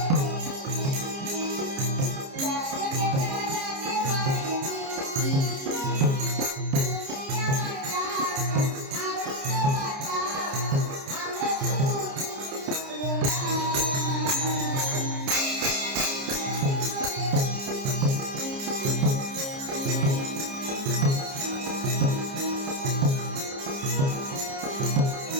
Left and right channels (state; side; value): late; left; 29 ms